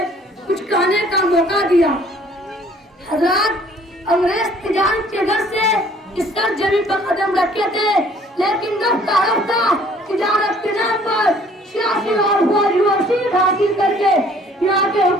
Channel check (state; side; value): normal; both; correlation 0.57